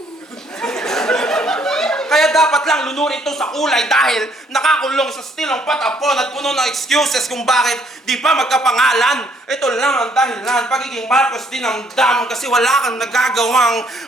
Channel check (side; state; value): both; normal; correlation 0.66